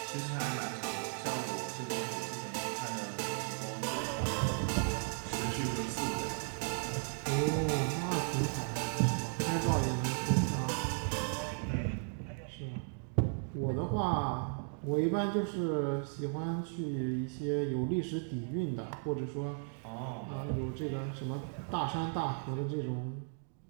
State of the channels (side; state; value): left; silent; 54 dB below the other